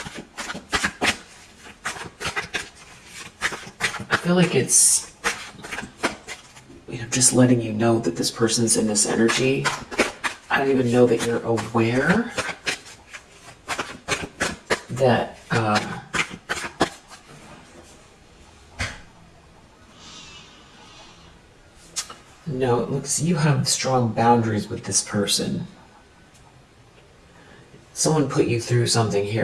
feel like it's, just letting you know that this person's in this energy. I don't even know that you're aware that no, it looks you have strong boundaries with this person. Someone put you through something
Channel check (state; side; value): identical; both; correlation 1.00